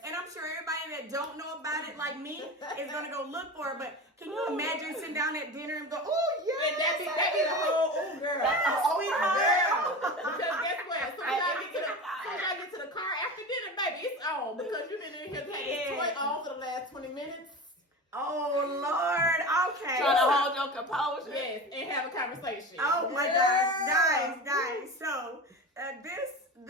And I'm sure everybody that don't know about it like me is going to go look for it. But can you imagine sitting down at dinner and go, oh, yeah. And that be the whole girl. Yes, sweetheart. Because guess what? As soon as I get to the car after dinner, baby, it's on. Because you've been in here taking this toy on for the last 20 minutes. Oh, Lord. Okay. Trying to hold your composure. Yes, and have a conversation. Oh, my gosh. Nice. So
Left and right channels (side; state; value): both; normal; correlation 0.29